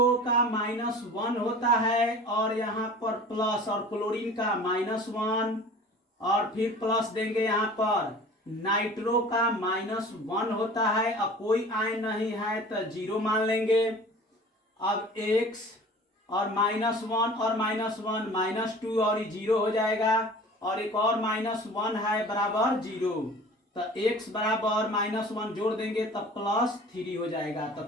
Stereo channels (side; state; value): both; normal; correlation 0.43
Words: का -1 होता है और यहाँ पर प्लस, और क्लोरीन का -1 और फिर प्लस देंगे। यहाँ पर नाइट्रो का -1 होता है, अब कोई आयन नहीं है तो 0 मान लेंगे। अब x और -1 और -1 -2 और ये 0 हो जाएगा, और एक और -1 है बराबर 0, तो x बराबर -1 जोड़ देंगे तब +3 हो जाएगा। तो